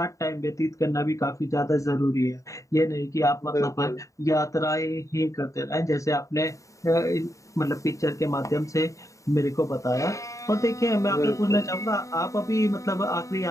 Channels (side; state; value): right; late; 0.16 ms